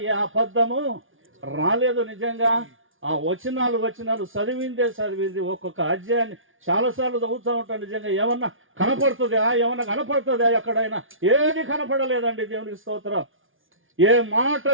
ఏ అబద్ధము రాలేదు. నిజంగా ఆ వచనాలు చదివింది ఒక్కొక్క అధ్యాయాన్ని చాలాసార్లు చదువుతూ ఉంటాను. నిజంగా ఏమన్నా కనపడుతుందా ఎక్కడైనా? ఏది కనపడలేదండి. దేవునికి స్తోత్రం. ఏ మాట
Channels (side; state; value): left; late; 0.58 ms